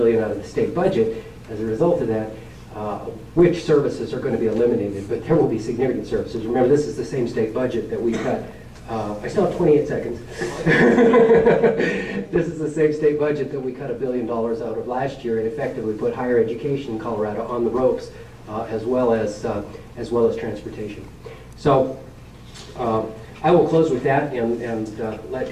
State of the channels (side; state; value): both; identical; correlation 1.00